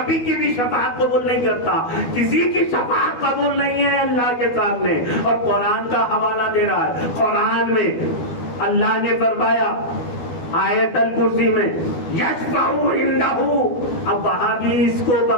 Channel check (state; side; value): late; right; 12 ms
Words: کی بھی شفاعت قبول نہیں کرتا. کسی کی شفاعت قبول نہیں ہے اللہ کے سامنے. اور قرآن کا حوالہ دے رہا ہے. قرآن میں اللہ نے فرمایا آیت الکرسی میں یشفع عنہ, اب وہاں بھی اس کو